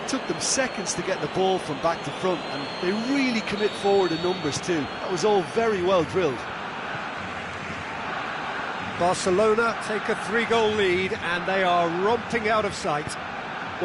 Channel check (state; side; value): identical; both; correlation 1.00